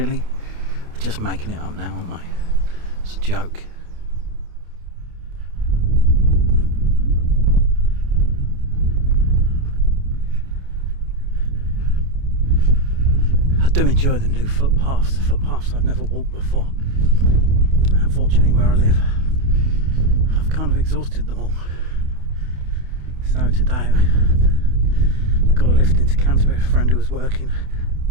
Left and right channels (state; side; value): late; left; 28 ms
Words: They're just making it up now, aren't they? It's a joke. I do enjoy the new footpaths, the footpaths I've never walked before. Unfortunately, where I live, I've kind of exhausted them all. So today I got a lift into Canterbury, a friend who was working,